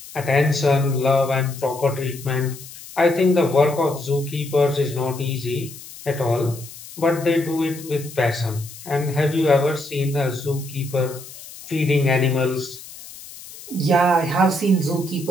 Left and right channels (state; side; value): noise; left; hiss, 16 dB below the sound